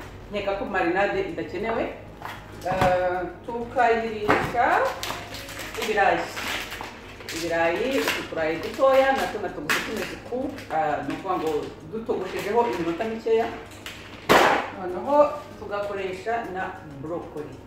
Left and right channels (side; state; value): both; identical; correlation 1.00